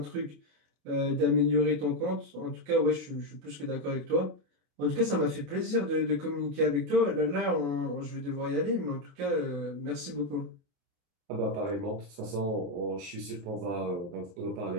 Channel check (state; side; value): late; left; 28 ms